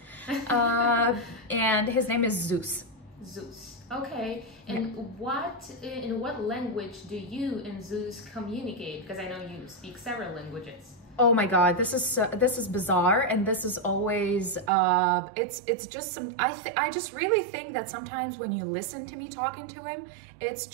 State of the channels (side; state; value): left; drops out; at 14.7 s